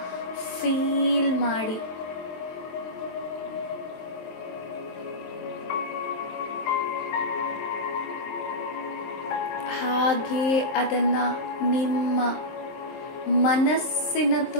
ಫೀಲ್ ಮಾಡಿ. ಹಾಗೆ ಅದನ್ನು ನಿಮ್ಮ ಮನಸ್ಸಿನ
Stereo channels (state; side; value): late; right; 23 ms